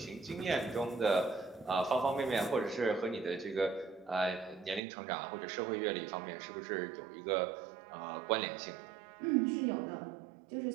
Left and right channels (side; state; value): left; drops out; at 4.8 s